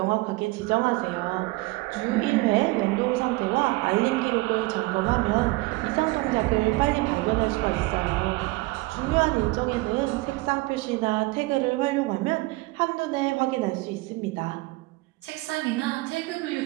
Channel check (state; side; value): quieter; left; 22.4 dB